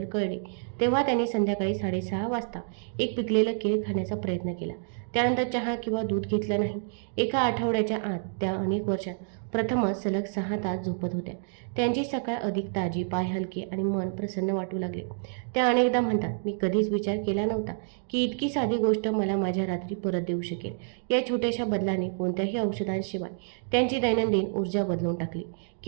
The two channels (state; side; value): silent; left; digital silence